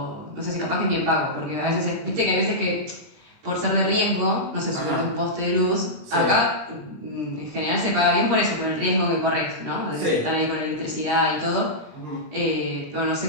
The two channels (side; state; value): left; late; 20 ms